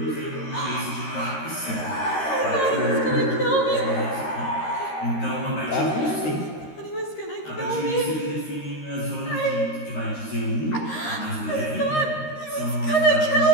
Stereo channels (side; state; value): right; late; 13 ms